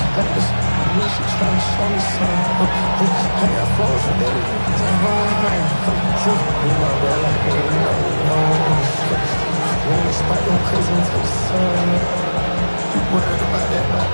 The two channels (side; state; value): both; inverted; correlation -1.00